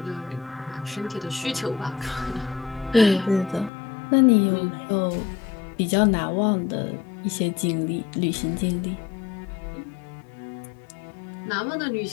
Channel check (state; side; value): drops out; right; at 3.7 s